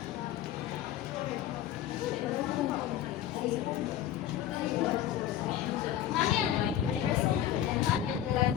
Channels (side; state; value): right; quieter; 11.6 dB